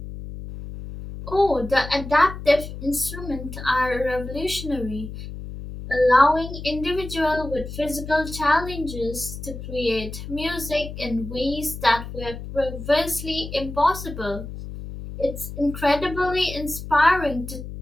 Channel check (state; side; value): noise; left; hum, 10 dB below the sound